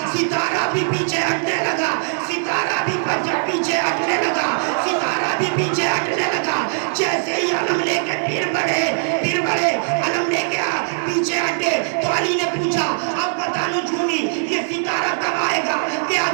ستارہ بھی پیچھے ہٹنے لگا، ستارہ بھی پیچھے ہٹنے لگا، ستارہ بھی پیچھے ہٹنے لگا، جیسے ہی علم لے کے پھر بڑھے، علم لے کے پیچھے ہٹے تو علی نے پوچھا اب بتا نجومی یہ ستارہ کب آئے گا کہ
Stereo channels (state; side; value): silent; left; digital silence